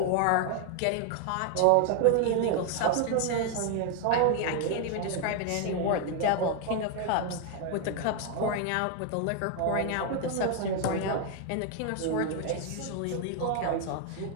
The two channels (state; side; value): different; both; correlation 0.00